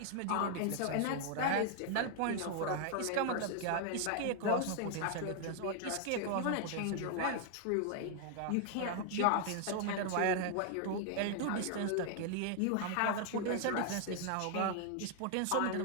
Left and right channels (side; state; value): both; different; correlation 0.00